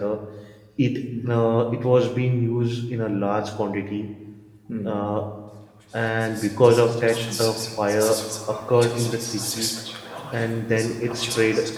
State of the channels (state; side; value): identical; both; correlation 1.00